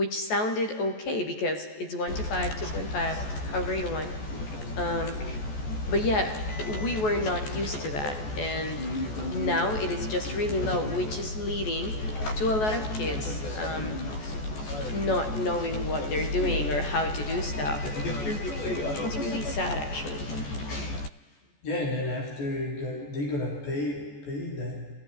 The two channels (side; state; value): right; late; 14 ms